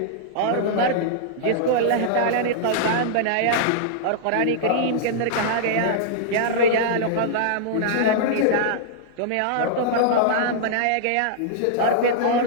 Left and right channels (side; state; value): both; different; correlation -0.02